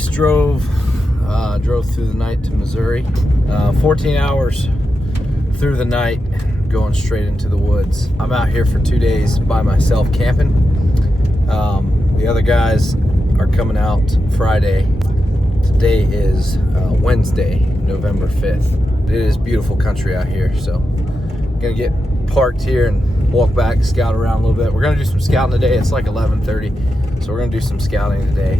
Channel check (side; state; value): both; normal; correlation 0.89